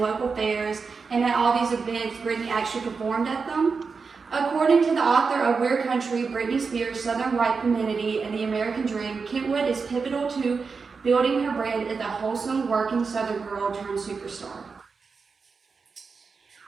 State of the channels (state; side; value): quieter; left; 5.0 dB